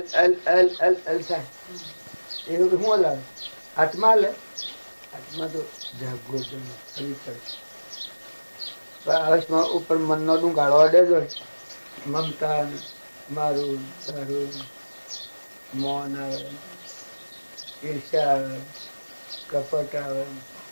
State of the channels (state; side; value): inverted; both; correlation -1.00